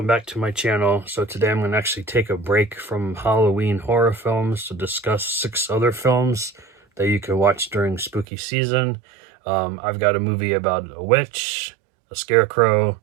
back to my channel. So today I'm going to actually take a break from Halloween horror films to discuss 6 other films that you can watch during spooky season. I've got a movie about a witch, a scarecrow,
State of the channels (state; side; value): drops out; left; at 8.2 s